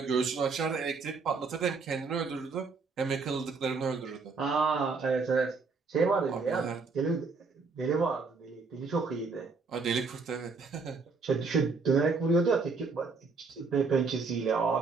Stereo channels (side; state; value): left; quieter; 4.5 dB